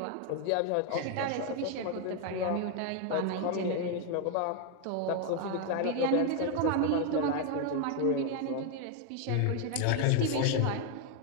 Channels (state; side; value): different; both; correlation 0.01